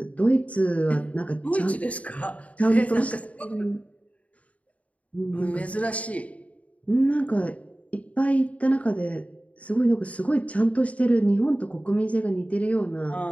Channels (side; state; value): right; late; 0.067 ms